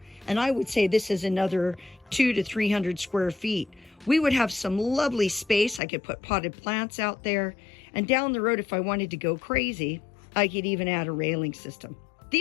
and I would say this is another 200 to 300 square feet, we would have some lovely space. I could put potted plants out there. And down the road, if I wanted to go crazy, I could even add a railing system.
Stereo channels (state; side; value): drops out; right; at 5.8 s